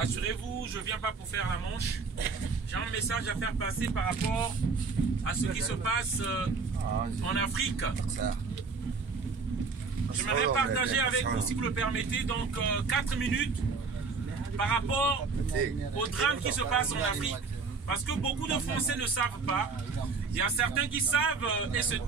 je ne viens pas pour faire la manche. J'ai un message à faire passer par rapport à ce qui se passe en Afrique. J'aimerais partager avec vous, si vous le permettez, donc 4 minutes par rapport au drame qui se passe en Afrique. Parce que beaucoup de Français ne savent pas. Il y a certains qui savent et se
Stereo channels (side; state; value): left; quieter; 4.7 dB